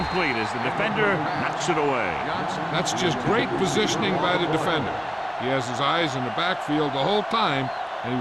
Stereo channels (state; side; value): identical; both; correlation 1.00